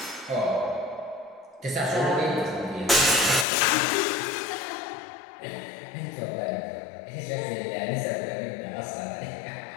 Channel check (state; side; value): drops out; right; at 3.5 s